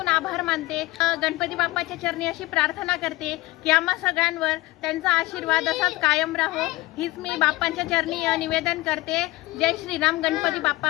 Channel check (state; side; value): quieter; right; 19.7 dB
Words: आभार मानते. गणपती बाप्पाच्या चरणी अशी प्रार्थना करते की आम्हा सगळ्यांवर त्यांचा आशीर्वाद असाच कायम राहो, हीच मी बाप्पांच्या चरणी निवेदन करते. जय श्रीराम, गणपती